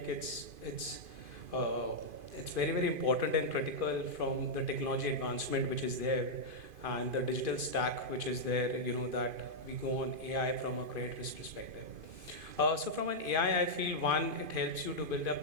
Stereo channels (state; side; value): late; left; 2.5 ms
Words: it's very, very important and critical from the technology advancement which is there and the digital stack which is there, that we go on AI from a credit risk perspective. So from an AI, I feel one, it helps you to build up